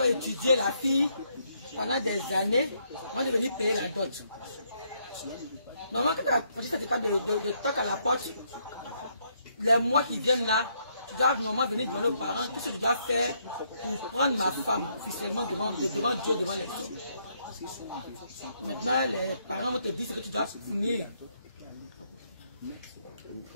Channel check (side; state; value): both; inverted; correlation -0.73